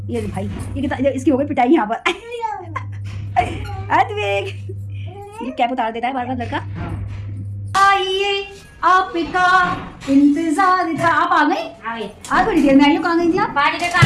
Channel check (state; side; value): identical; both; correlation 1.00